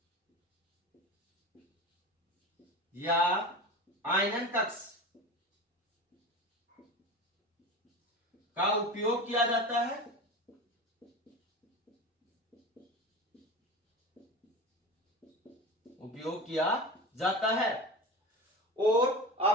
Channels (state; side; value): normal; both; correlation 0.30